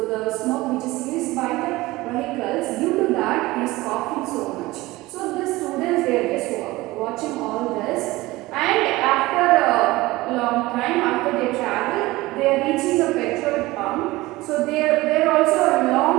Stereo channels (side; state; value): left; quieter; 19.6 dB